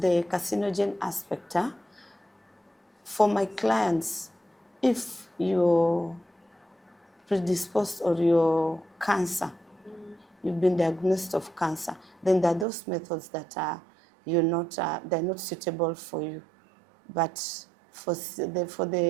carcinogen aspect, for my clients, if you're predisposed or you're cancer, you've been diagnosed of cancer, then there are those methods that they're not suitable for you. But for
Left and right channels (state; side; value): drops out; left; at 12.7 s